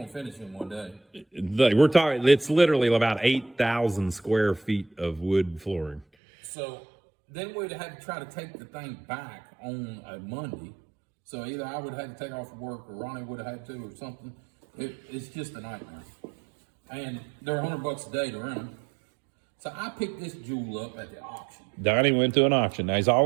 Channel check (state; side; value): drops out; left; at 6.1 s